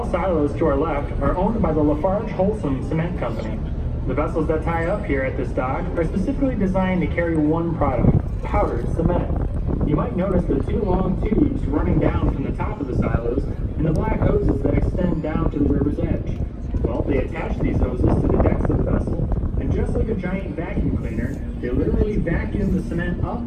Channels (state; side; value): identical; both; correlation 1.00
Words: silos to our left are owned by the Lafarge Holcim Cement Company. The vessels that tie up here at this dock are specifically designed to carry one product, powdered cement. You might notice the 2 long tubes running down from the top of the silos and the black hoses that extend down to the river's edge. Well, they attach these hoses to the decks of the vessel, and just like a giant vacuum cleaner, they literally vacuum the cement up,